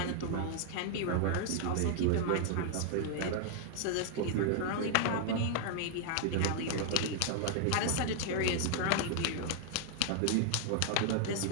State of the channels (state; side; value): different; both; correlation 0.00